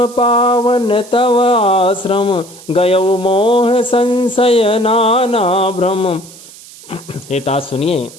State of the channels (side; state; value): right; noise; hiss, 20 dB below the sound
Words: पावन तव आश्रम, गयउ मोह संशय नाना भ्रम। हे तात सुनिए,